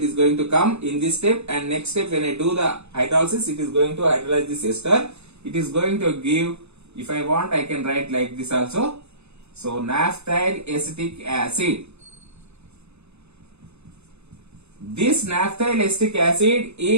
is going to come in this step, and next step when I do the hydrolysis, it is going to hydrolyze this ester. It is going to give, if I want I can write like this also. So naphthyl acetic acid. This naphthyl acetic acid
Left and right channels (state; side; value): late; left; 0.80 ms